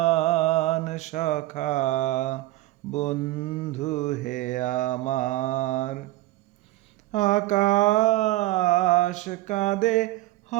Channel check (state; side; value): quieter; left; 17.7 dB